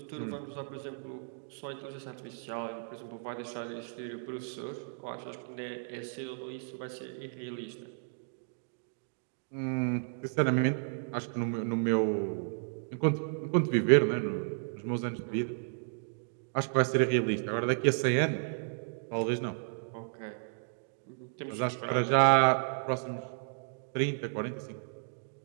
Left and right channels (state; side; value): silent; left; digital silence